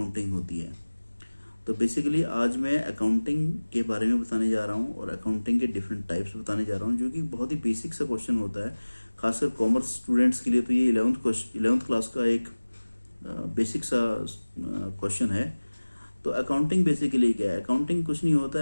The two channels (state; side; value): inverted; both; correlation -1.00